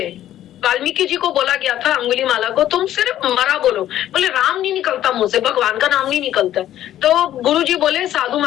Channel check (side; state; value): right; quieter; 12.3 dB